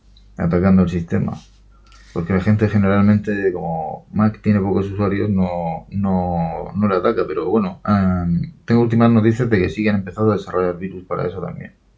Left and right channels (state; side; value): identical; both; correlation 1.00